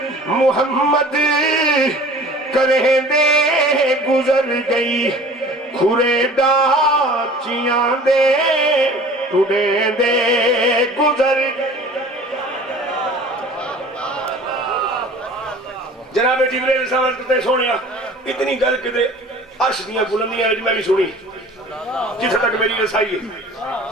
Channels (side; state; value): both; normal; correlation 0.45